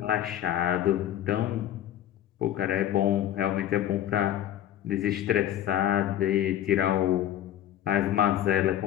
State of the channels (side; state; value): right; quieter; 11.7 dB